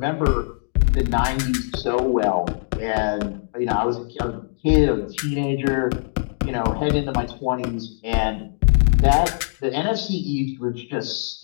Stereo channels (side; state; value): right; silent; digital silence